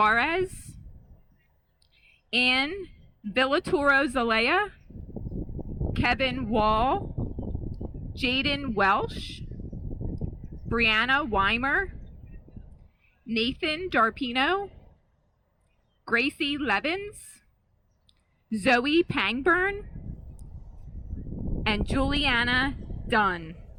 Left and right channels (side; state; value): both; identical; correlation 1.00